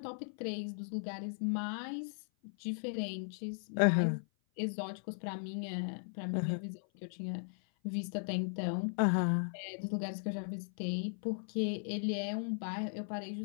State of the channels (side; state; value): right; silent; 53 dB below the other